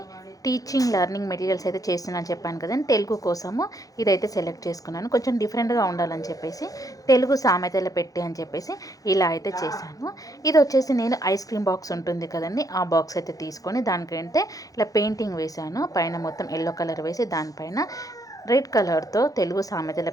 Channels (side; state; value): right; late; 0.17 ms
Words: టీచింగ్ లెర్నింగ్ మెటీరియల్స్ అయితే చేస్తున్నాను చెప్పాను కదండి. తెలుగు కోసము ఇదైతే సెలెక్ట్ చేసుకున్నాను. కొంచెం డిఫరెంట్గా ఉండాలని చెప్పేసి తెలుగు సామెతలు పెట్టి అని చెప్పేసి ఇలా అయితే చేశాను. ఇది వచ్చేసి నేను ఐస్ క్రీమ్ బాక్స్ ఉంటుంది కదండి, ఆ బాక్స్ అయితే తీసుకొని దానికంటే ఇలా పెయింటింగ్ వేశాను. పైన మొత్తం ఎల్లో కలర్ వేసి దానిపైన రెడ్ కలర్తో తెలుగు సామెతలు